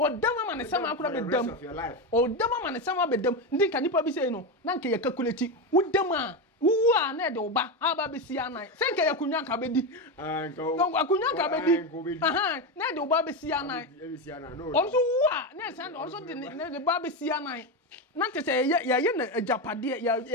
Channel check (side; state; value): both; normal; correlation 0.14